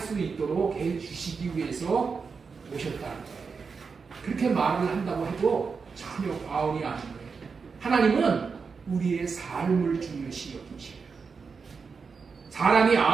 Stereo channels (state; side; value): quieter; left; 5.3 dB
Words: 있도록 해 주시기 위해서 오셨다는 거예요. 그렇게 말을 한다고 해도 전혀 과언이 아닌 거예요. 하나님은 우리의 삶을 중요시 여기셔요. 사람이